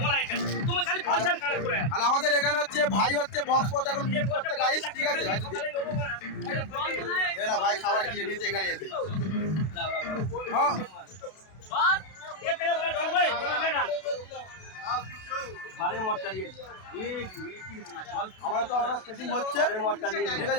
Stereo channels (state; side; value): late; right; 32 ms